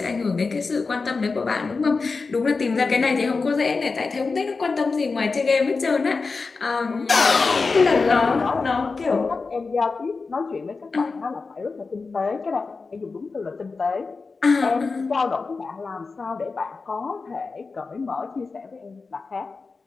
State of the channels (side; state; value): right; quieter; 4.3 dB